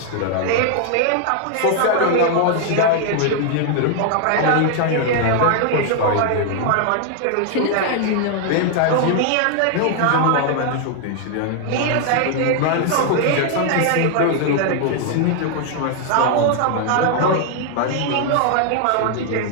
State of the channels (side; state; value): both; different; correlation 0.00